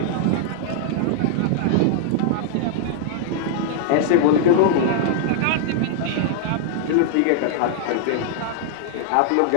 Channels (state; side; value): different; both; correlation -0.01